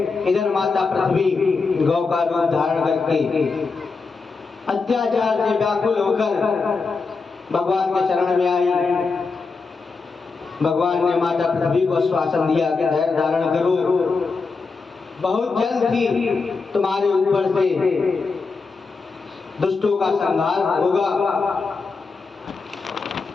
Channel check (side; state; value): right; quieter; 4.4 dB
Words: इधर माता पृथ्वी गौ का रूप धारण करके अत्याचार से व्याकुल होकर भगवान के शरण में आई। भगवान ने माता पृथ्वी को आश्वासन दिया कि धैर्य धारण करो, बहुत जल्द ही तुम्हारे ऊपर से दुष्टों का संहार होगा।